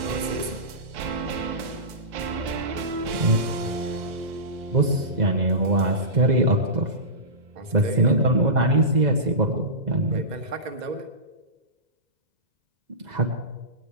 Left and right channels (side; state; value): left; late; 2.0 ms